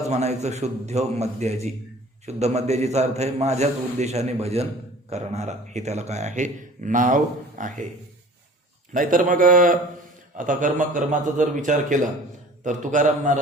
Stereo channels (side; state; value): both; normal; correlation 0.46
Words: म्हणायचं शुद्ध मध्याजी. शुद्ध मध्याजीचा अर्थ आहे माझ्याच उद्देशाने भजन करणारा, हे त्याला काय आहे, नाव आहे. नाहीतर मग आता कर्माचा जर विचार केला तर तुकाराम